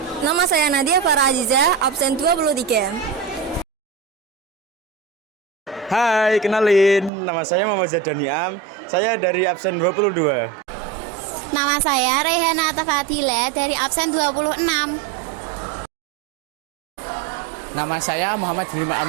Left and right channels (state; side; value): drops out; left; at 7.1 s